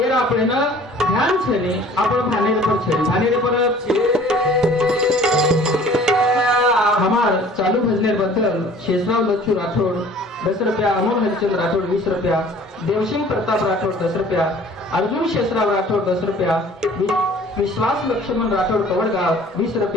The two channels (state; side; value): normal; both; correlation 0.50